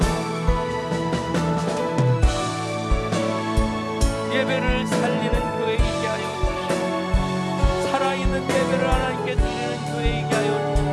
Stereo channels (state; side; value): identical; both; correlation 1.00